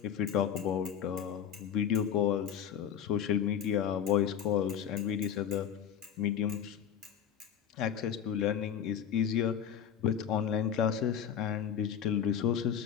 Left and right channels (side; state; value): right; quieter; 8.8 dB